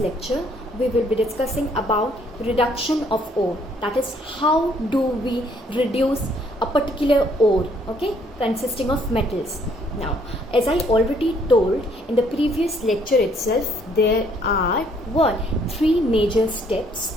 we will be discussing about reduction of ore, that is how do we reduce a particular ore, okay, consisting of metals. Now as I already told in the previous lecture itself, there are three major steps,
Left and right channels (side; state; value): both; normal; correlation 0.65